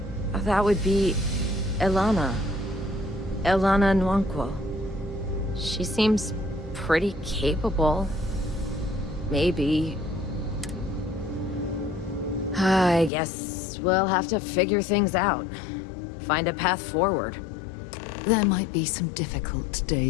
would be Elana. Elana Nwankwo. She seems pretty capable. Maybe. I guess we'll have to figure things out. Find a path forward. There might be some difficult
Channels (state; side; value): drops out; right; at 13.1 s